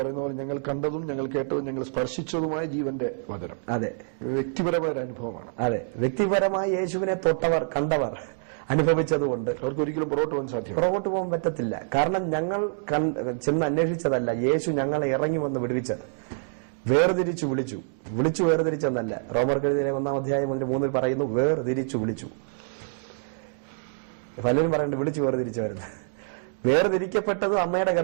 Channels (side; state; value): left; silent; digital silence